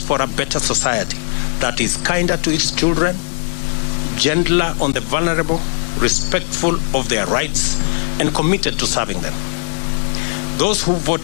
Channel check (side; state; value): right; silent; digital silence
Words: for a better society that is kinder to its children, gentler on the vulnerable, respectful of their rights, and committed to serving them. Those who